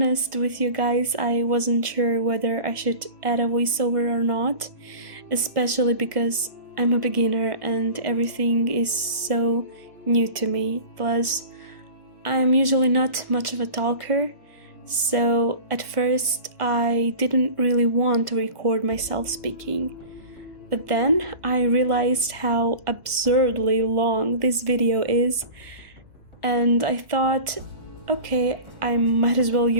with you guys, I wasn't sure whether I should add a voiceover or not, especially because I'm a beginner and everything is so new to me. Plus, I'm usually not much of a talker, so at first I didn't really want to record myself speaking. But then I realized how absurdly long this video is, and I thought, okay, I might as well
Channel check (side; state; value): left; late; 1.5 ms